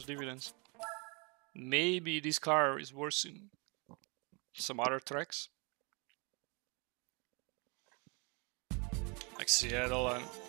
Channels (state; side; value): quieter; left; 32.0 dB